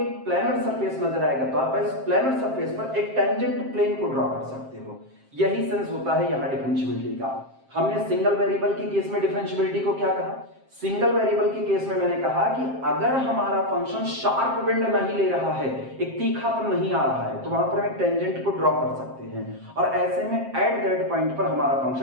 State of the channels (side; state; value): left; late; 7.5 ms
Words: प्लेनर सरफेस नजर आएगा तो आप इस प्लेनर सरफेस पर एक टेंजेंट प्लेन को ड्रॉ कर सकते हो। यही सेंस होता है यहाँ डिफरेंशियबिलिटी का। हमने सिंगल वेरिएबल के केस में डिफरेंशियबिलिटी को क्या कहा, सिंगल वेरिएबल के केस में मैंने कहा कि अगर हमारा फंक्शन शार्प बेंड नहीं ले रहा है, एक तीखापन नहीं आ रहा है, तो वहां पर हम एक टेंजेंट को ड्रॉ कर सकते हैं और ऐसे में एट दैट पॉइंट पर हमारा